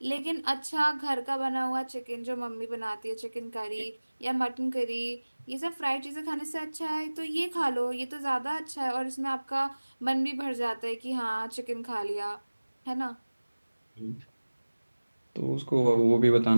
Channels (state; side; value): inverted; both; correlation -1.00